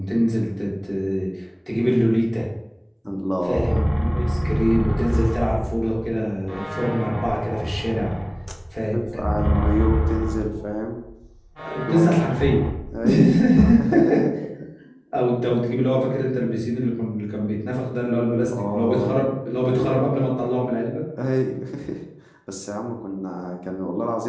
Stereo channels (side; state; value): both; identical; correlation 1.00